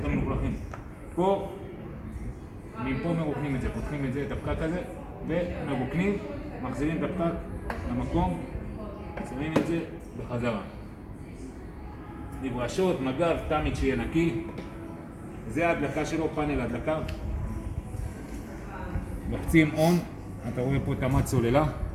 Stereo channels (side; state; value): both; identical; correlation 1.00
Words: המלוכלכים. פה, מפה מרוקנים את זה, פותחים את זה, את הפקק הזה, ומרוקנים, מחזירים את הפקק למקום, שמים את זה בחזרה. נברשות, מגב, תמיד שיהיה נקי. זה ההדלקה שלו, פאנל ההדלקה. לוחצים און, אתה רואה פה תמת סוללה.